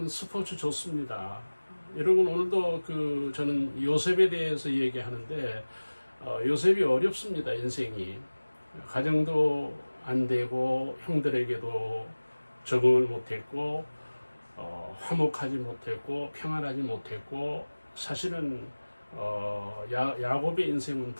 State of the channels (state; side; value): inverted; both; correlation -1.00